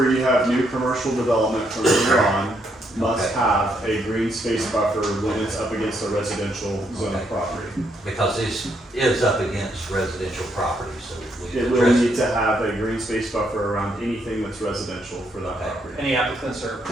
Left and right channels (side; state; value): both; normal; correlation 0.75